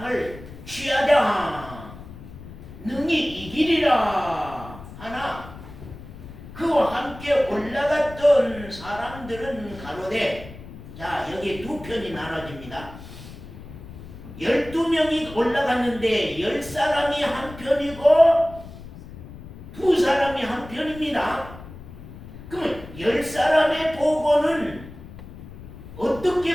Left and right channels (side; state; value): left; noise; rumble, 15 dB below the sound